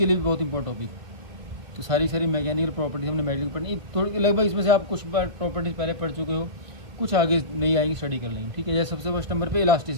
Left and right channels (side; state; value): left; late; 2.2 ms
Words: लिए भी बहुत इंपॉर्टेंट टॉपिक। तो सारी मैकेनिकल प्रॉपर्टीज हमने मेडिकल पढ़नी थोड़ी, लगभग इसमें से आप कुछ बार प्रॉपर्टीज पहले पढ़ चुके हो, कुछ आगे नहीं आएंगी, स्टडी कर लेंगे, ठीक है। जैसे सबसे फर्स्ट नंबर पे